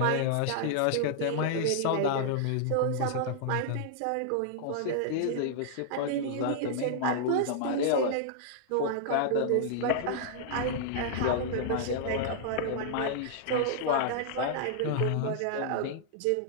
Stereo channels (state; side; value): different; both; correlation -0.01